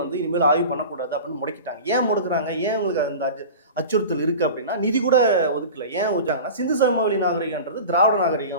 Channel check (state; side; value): inverted; both; correlation -0.34